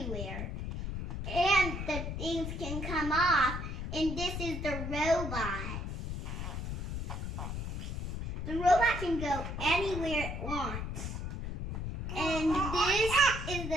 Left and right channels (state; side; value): noise; left; rumble, 4 dB below the sound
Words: and the things can come off. And this is the robot. The robot can go anywhere it wants. And this is